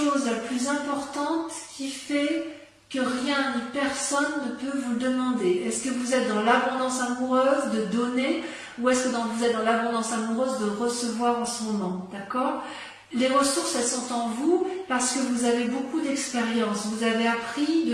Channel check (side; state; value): both; identical; correlation 1.00